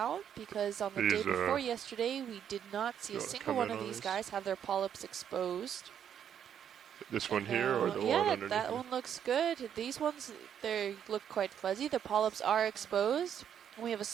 because on the day These, before yesterday, we did not see a wanna single come one in of on these these? guys have their polyps exposed. This one And here or now- the yeah, one underneath? that it? one looks good. These ones, they look quite fuzzy. The polyps are exposed. And we have a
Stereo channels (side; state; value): left; quieter; 8.9 dB